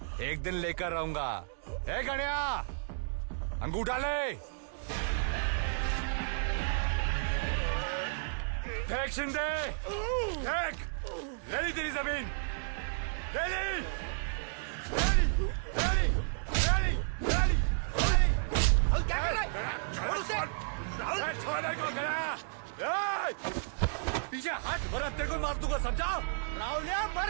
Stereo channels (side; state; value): left; silent; digital silence